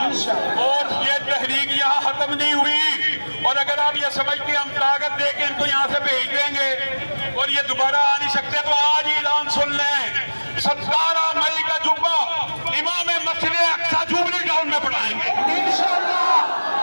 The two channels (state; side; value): inverted; both; correlation -1.00